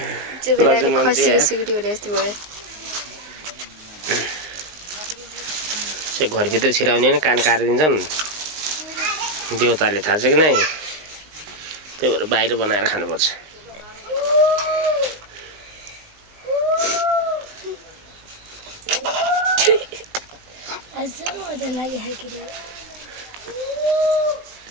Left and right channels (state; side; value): late; left; 19 ms